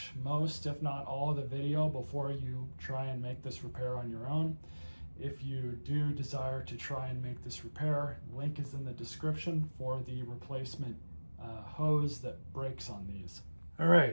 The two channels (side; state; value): both; inverted; correlation -1.00